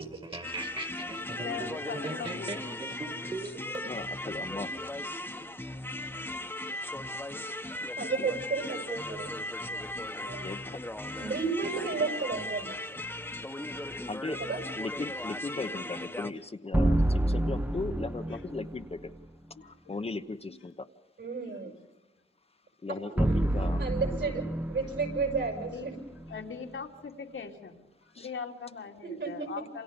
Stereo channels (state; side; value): normal; both; correlation 0.57